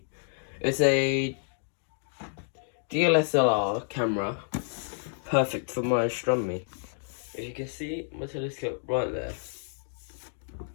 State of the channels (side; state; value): right; silent; digital silence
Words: It's a DLSR camera, perfect for my astronomy. If you can see my telescope right there.